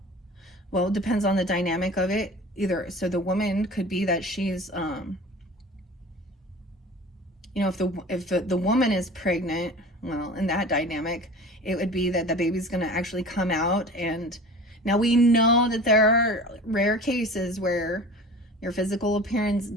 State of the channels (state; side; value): normal; both; correlation 0.39